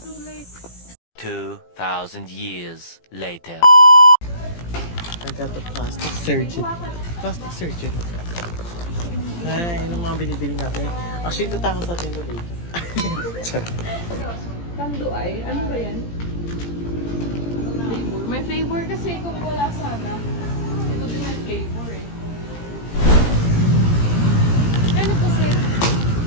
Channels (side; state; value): right; late; 17 ms